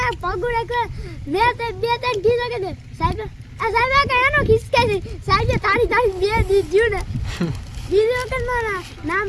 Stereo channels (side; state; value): both; identical; correlation 1.00